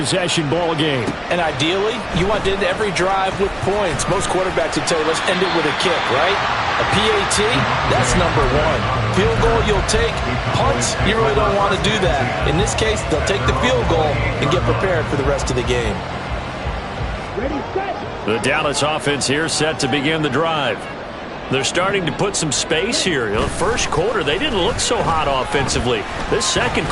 ball game. And ideally, you want to end every drive with points. Most quarterbacks would tell you, let's end it with a kick, right? A PAT, that's number 1. Field goal you'll take. Punts, you really don't want to do that. In this case, they'll take the field goal and get prepared for the rest of the game. The Dallas offense here set to begin the drive. They're starting to put some space here. The first quarter, they didn't look so hot offensively. This second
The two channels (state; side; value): identical; both; correlation 1.00